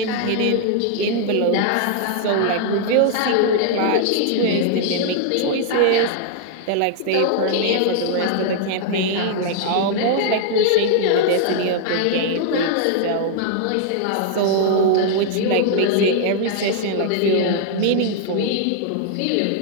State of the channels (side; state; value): both; different; correlation -0.01